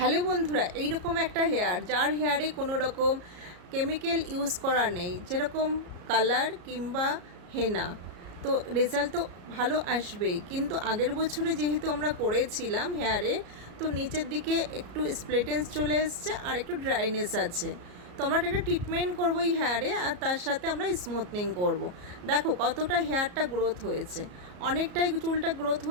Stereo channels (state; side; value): late; left; 34 ms